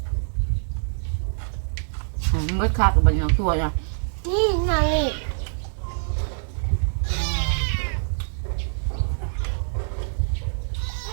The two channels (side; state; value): left; silent; digital silence